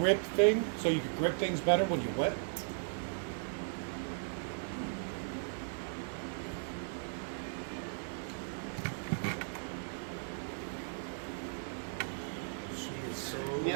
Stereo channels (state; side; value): silent; left; digital silence